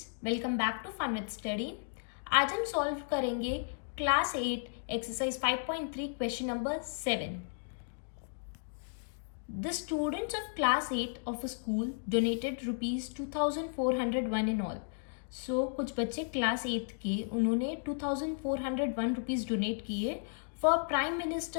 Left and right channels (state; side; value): silent; right; digital silence